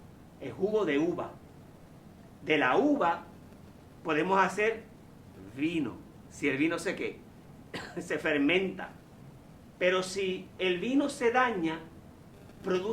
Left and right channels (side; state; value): both; identical; correlation 1.00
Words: el jugo de uva. De la uva podemos hacer vino. Si el vino se fermenta. Pero si el vino se daña,